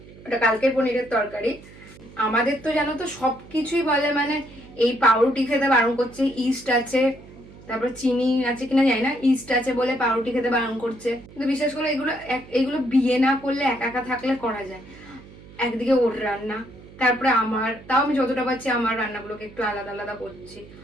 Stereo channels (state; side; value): noise; right; hum, 20 dB below the sound